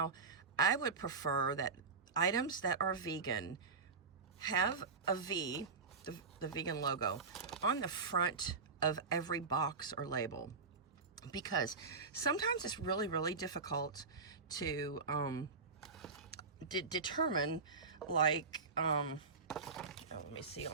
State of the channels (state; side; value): quieter; left; 4.6 dB